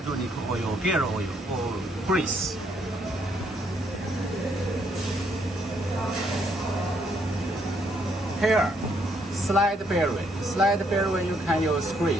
oil, gear oil, or grease. Here, slide bearing. Slide bearing you can use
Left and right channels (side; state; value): both; normal; correlation 0.71